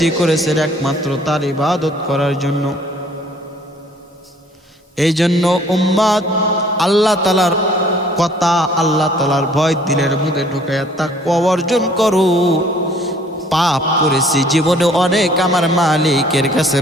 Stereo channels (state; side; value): normal; both; correlation 0.57